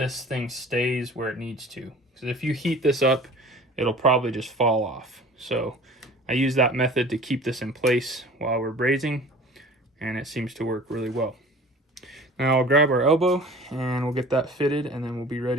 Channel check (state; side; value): normal; both; correlation 0.44